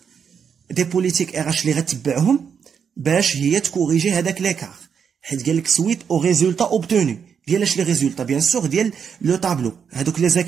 des politiques RH اللي غتبعهم باش هي تكوريجي هذاك ليكار. حيت قال لك suite au résultat obtenu. ديال اش لي ريزولتا؟ بيان سور ديال لو طابلو، هذوك لي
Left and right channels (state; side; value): quieter; left; 7.0 dB